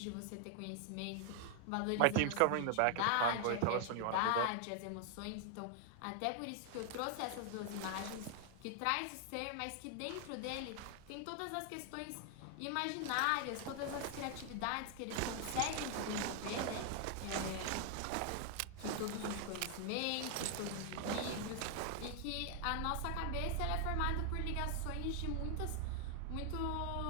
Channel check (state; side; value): different; both; correlation 0.00